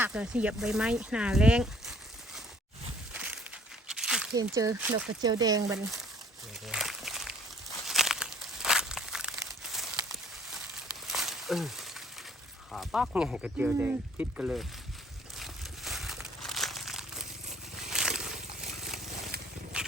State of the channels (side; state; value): both; normal; correlation 0.58